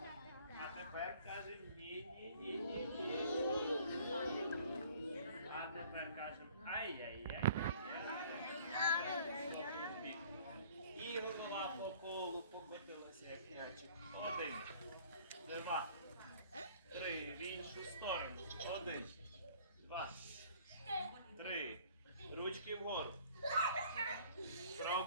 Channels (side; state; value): both; inverted; correlation -0.53